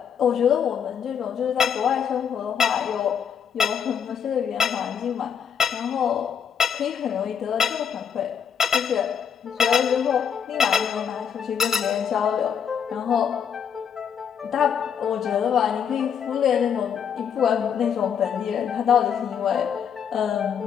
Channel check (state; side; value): quieter; right; 7.7 dB